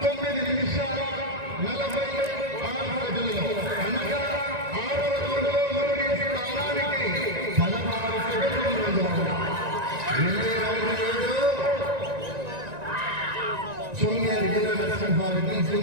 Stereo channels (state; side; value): late; left; 1.9 ms